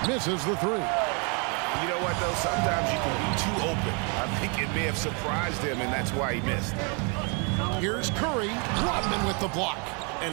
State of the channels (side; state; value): left; quieter; 35.0 dB